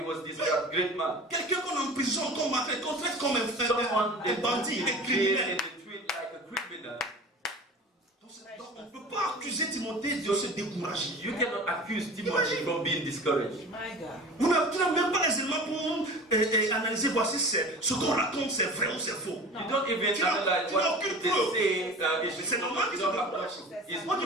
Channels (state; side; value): normal; both; correlation 0.38